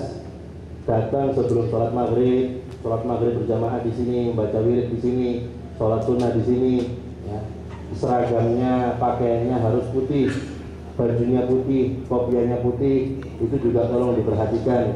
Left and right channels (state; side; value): identical; both; correlation 1.00